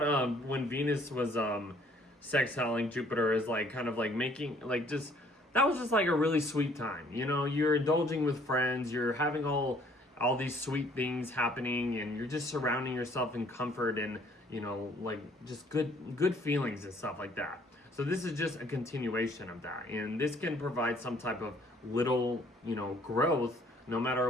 when Venus was sextiling Jupiter is like kind of like making like just that was just like a really sweet time. You're indulging with friends, you're having all these sweet things happening, and you're just surrounding yourself in comfort and like just good feelings and stuff like that. So this is just a continuation of that, and this can provide some type of little growth. No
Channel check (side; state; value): both; normal; correlation 0.60